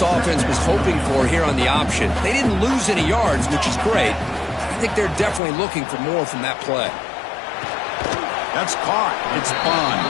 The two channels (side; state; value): right; drops out; at 5.4 s